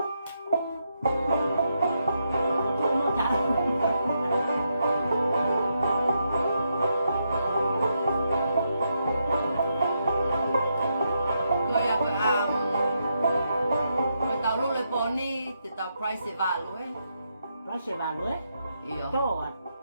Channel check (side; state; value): both; inverted; correlation -0.81